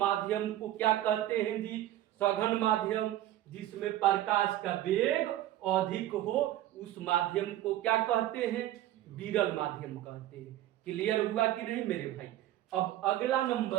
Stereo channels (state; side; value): quieter; left; 13.7 dB